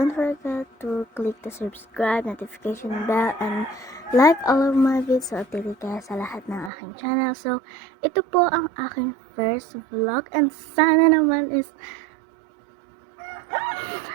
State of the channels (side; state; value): left; drops out; at 6.7 s